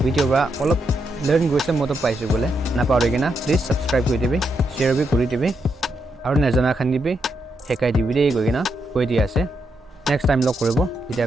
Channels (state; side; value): normal; both; correlation 0.81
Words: video ba olop learn goise moto paisu bole na paurigena please subscribe kori dibi share bi kori dibi aru najana khan dibi hekai dibi dei goigena koi dia ase next time log koribo